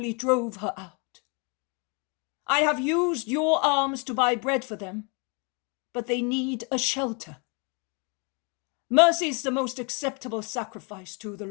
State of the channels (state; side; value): quieter; right; 33.5 dB